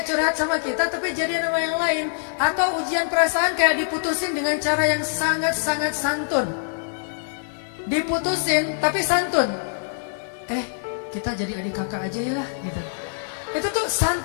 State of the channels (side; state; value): right; silent; digital silence